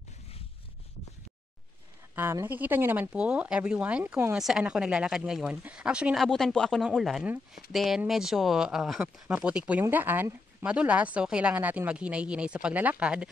Nakikita nyo naman po, everyone, kung saan ako naglalakad ngayon. Actually, naabutan po ako ng ulan. Then, medyo maputik po yung daan. Madulas, so kailangan natin maghinay-hinay sa paglalakad.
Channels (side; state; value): right; quieter; 3.6 dB